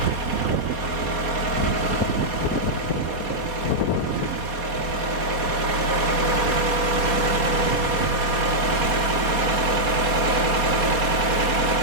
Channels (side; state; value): left; late; 4.2 ms